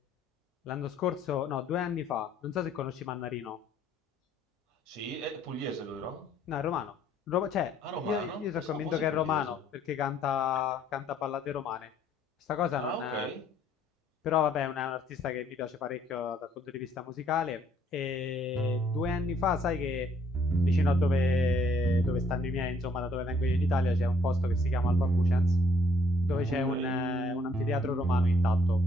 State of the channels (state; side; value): normal; both; correlation 0.65